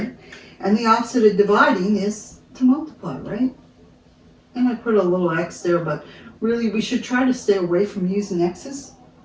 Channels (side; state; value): both; identical; correlation 1.00